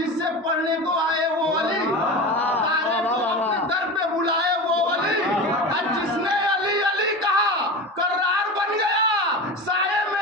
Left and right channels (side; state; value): both; normal; correlation 0.28